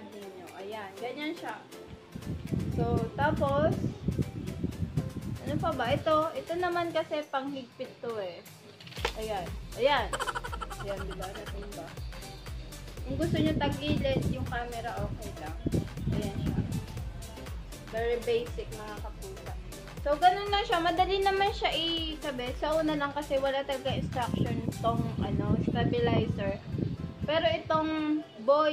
ninyo. Ayan. Ganyan siya. So, tapos, ano Ano pa ba? Ito naman kasi panghigpit to eh. Ayan. Ayan. Ayan, diba? Natimba. Kung gusto nyo tagilid yung camera, okay lang. Ayan siya. Very basic mga kapusa. So, ganun lang siya. Madali naman siya ikabit. Sa una lang kasi wala talaga instruction itong stabilizer. Pero itong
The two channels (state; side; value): identical; both; correlation 1.00